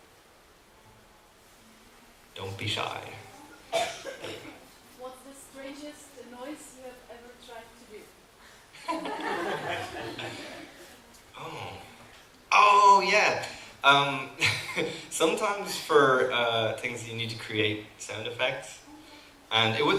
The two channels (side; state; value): both; identical; correlation 1.00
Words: Don't be shy. What's the strangest noise you have ever tried to do? Oh yeah. Sometimes for things you need to create sound effects, and